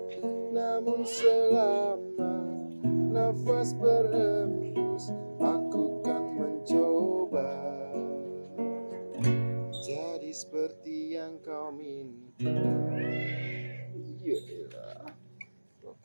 namun selama nafas berhembus aku kan mencoba jadi seperti yang kau minta. Iyalah,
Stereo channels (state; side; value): inverted; both; correlation -1.00